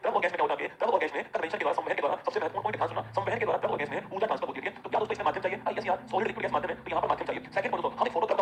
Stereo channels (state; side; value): identical; both; correlation 1.00